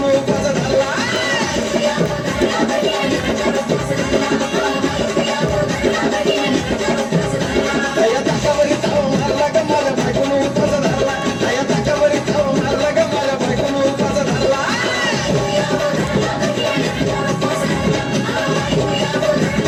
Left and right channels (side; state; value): both; identical; correlation 1.00